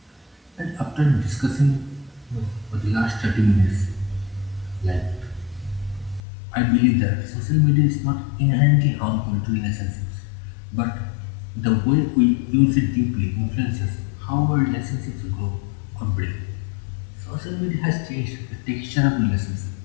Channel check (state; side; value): drops out; right; at 6.2 s